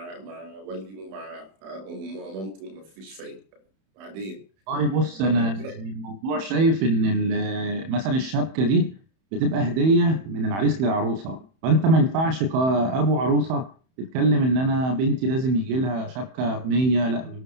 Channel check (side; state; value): left; late; 31 ms